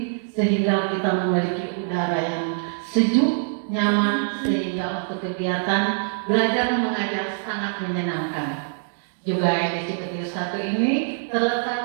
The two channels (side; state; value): left; silent; digital silence